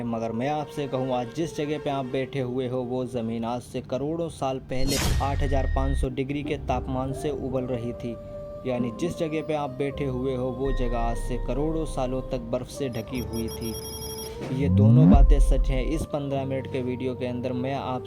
मगर मैं आपसे कहूँ आज जिस जगह पे आप बैठे हुए हो वो ज़मीन आज से करोड़ों साल पहले 8500 डिग्री के तापमान से उबल रही थी। यानी जिस जगह पे आप बैठे हुए हो वो जगह आज से करोड़ों सालों तक बर्फ़ से ढकी हुई थी। ये दोनों बातें सच हैं। इस 15 मिनट के वीडियो के अंदर मैं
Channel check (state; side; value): identical; both; correlation 1.00